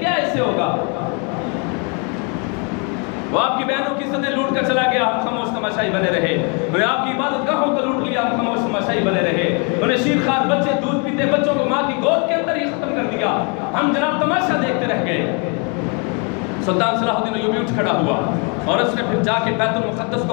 اس سے ہوگا؟ وہ آپ کی بہنوں کی عزتیں لوٹ کر چلا گیا، ہم خاموش تماشائی بنے رہے. انہیں آپ کی عبادت گاہوں کو لوٹ لیا، ہم خاموش تماشائی بنے رہے. انہیں شیرخوار بچے دودھ پیتے بچوں کو ماں کی گود کے اندر ہی ختم کر دیا، ہم جناب تماشا دیکھتے رہ گئے. سلطان صلاح الدین ایوبی اٹھ کھڑا ہوا اور اس نے پھر جا کے بیت المقدس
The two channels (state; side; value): quieter; right; 35.5 dB